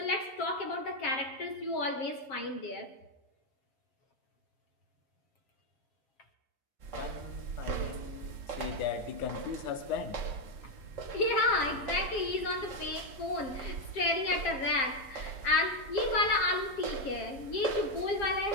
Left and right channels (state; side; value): late; right; 7.4 ms